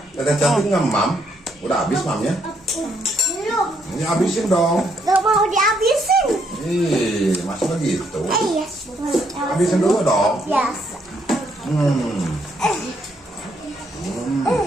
Dada cantik nggak, Mam? Udah habis, Mamnya? Ini habisin dong. Gak mau dihabisin. Ih, masih begitu. Yes. Habisin dulu dong. Yes.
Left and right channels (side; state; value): both; normal; correlation 0.73